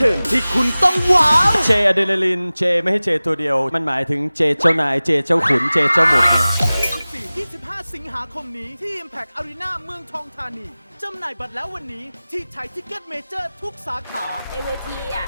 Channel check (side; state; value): both; inverted; correlation -0.98